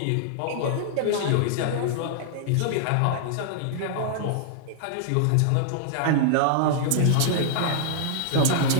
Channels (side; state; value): both; different; correlation -0.01